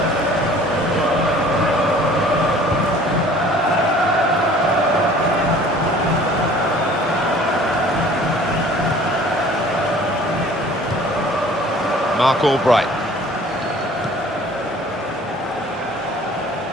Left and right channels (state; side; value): normal; both; correlation 0.51